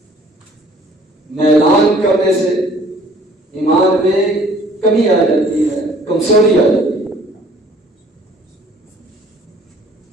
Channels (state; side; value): normal; both; correlation 0.56